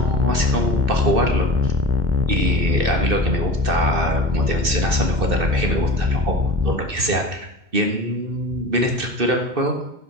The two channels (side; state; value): left; late; 2.6 ms